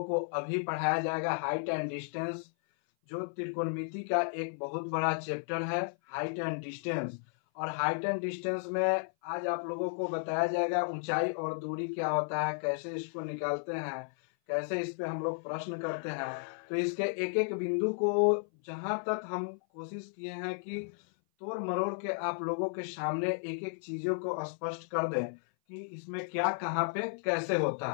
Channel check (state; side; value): silent; right; 55 dB below the other